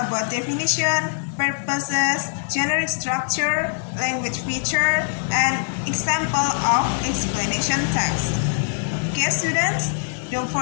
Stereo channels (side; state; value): right; silent; digital silence